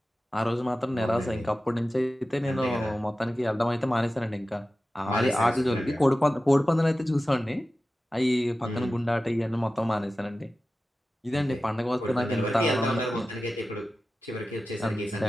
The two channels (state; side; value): normal; both; correlation 0.95